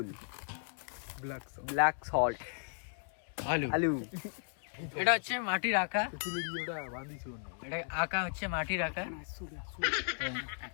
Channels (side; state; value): right; silent; digital silence